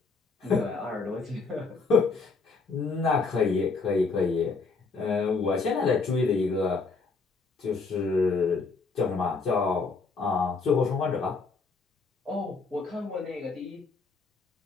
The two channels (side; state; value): right; quieter; 4.3 dB